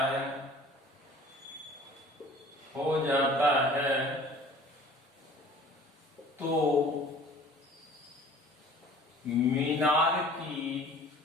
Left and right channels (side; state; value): both; normal; correlation 0.48